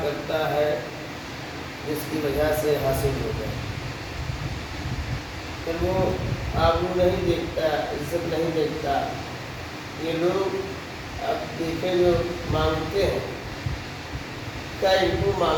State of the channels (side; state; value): both; identical; correlation 1.00